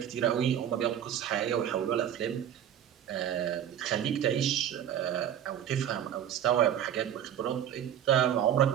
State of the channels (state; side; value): quieter; left; 10.1 dB